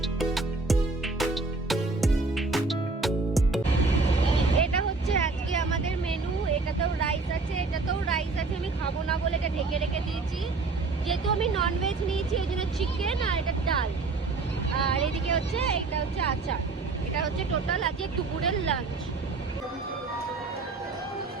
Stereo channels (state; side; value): quieter; left; 3.7 dB